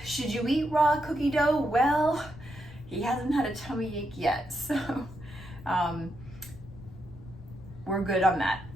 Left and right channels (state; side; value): noise; left; rumble, 17 dB below the sound